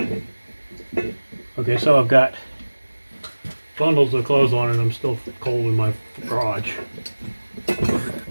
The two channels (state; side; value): inverted; both; correlation -1.00